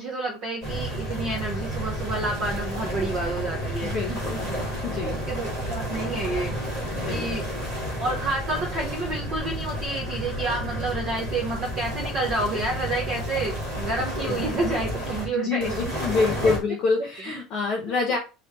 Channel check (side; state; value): both; normal; correlation 0.53